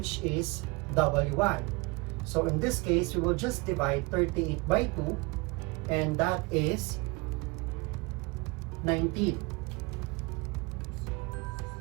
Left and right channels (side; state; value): left; quieter; 26.3 dB